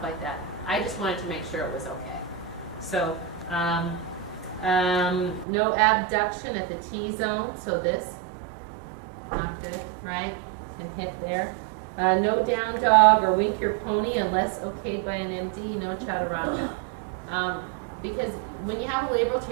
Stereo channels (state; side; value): drops out; left; at 5.5 s